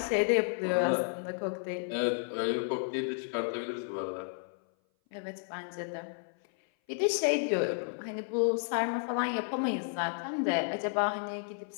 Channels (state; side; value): silent; right; 56 dB below the other